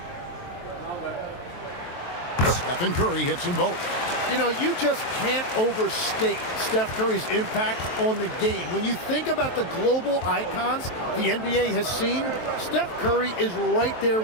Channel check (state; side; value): late; right; 23 ms